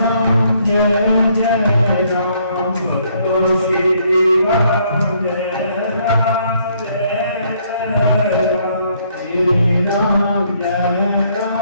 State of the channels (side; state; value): both; inverted; correlation -0.68